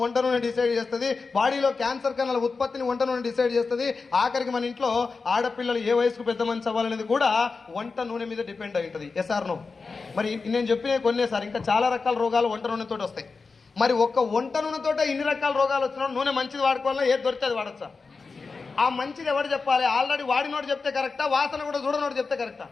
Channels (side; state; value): right; quieter; 4.4 dB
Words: వంట నూనె డిసైడ్ చేస్తుంది. బాడీలో క్యాన్సర్ కణాల ఉత్పత్తిని వంట నూనె డిసైడ్ చేస్తుంది. ఆఖరికి మన ఇంట్లో ఆడపిల్లలు ఏ వయసుకు పెద్ద మనిషి అవ్వాలనేది కూడా వంట నూనె మీద డిపెండ్ అయి ఉంటుంది. Yes or no? మరి నేను చెప్పిన కొన్నే సార్, ఇంకా చాలా రకాల రోగాలు వంట నూనెతో వస్తాయి. మరి ఒక్క వంట నూనెతో ఇన్ని రకాల రోగాలు వచ్చినా నూనె మంచిది వాడుకోవాలన్నా ఏది దొరికితే అది వాడచ్చా? ఆ మంచిది ఎవరు చెప్పాలి? ఆల్రెడీ వాడినోడు చెప్తే కరెక్టా? వాసన కూడా చూడనోడు చెప్తే కరెక్టా?